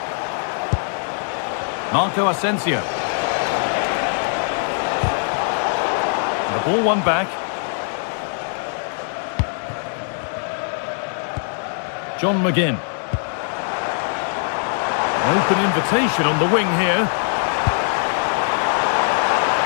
Marco Asensio. The ball won back. John McGinn. An open invitation on the wing here.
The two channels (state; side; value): silent; right; 65 dB below the other